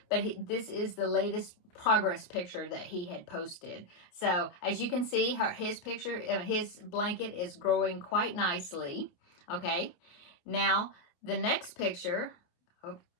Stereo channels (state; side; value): late; right; 28 ms